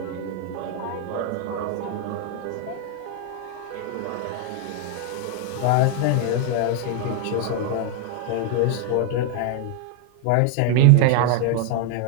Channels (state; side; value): different; both; correlation 0.00